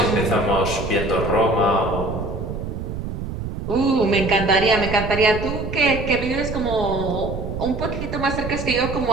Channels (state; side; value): noise; right; rumble, 6 dB below the sound